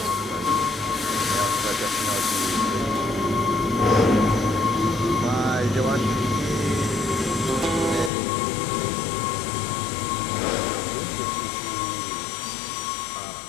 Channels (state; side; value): drops out; right; at 8.1 s